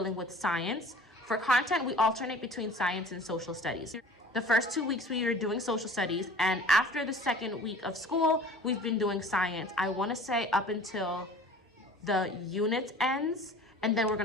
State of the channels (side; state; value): both; normal; correlation 0.44